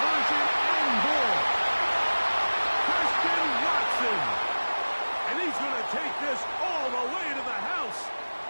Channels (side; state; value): both; inverted; correlation -1.00